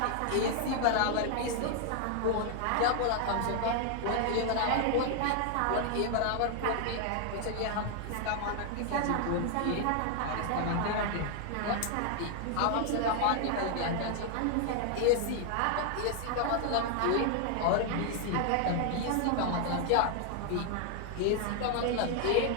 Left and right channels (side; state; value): both; different; correlation 0.00